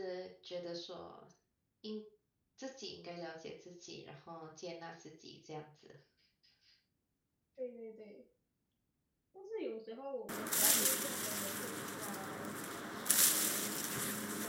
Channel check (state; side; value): identical; both; correlation 1.00